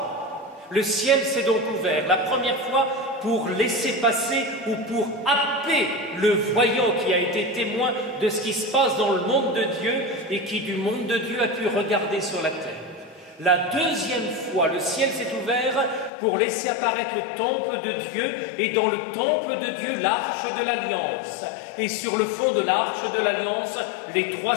le ciel s'est donc ouvert. La première fois pour laisser passer ou pour happer le voyant qui a été témoin de ce qui se passe dans le monde de Dieu et qui du monde de Dieu a pu regarder sur la terre. La deuxième fois, le ciel s'est ouvert pour laisser apparaître le temple de Dieu et dans le temple de Dieu, l'arche de l'Alliance. Et sur le fond de l'arche de l'Alliance, les 3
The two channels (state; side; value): drops out; right; at 16.1 s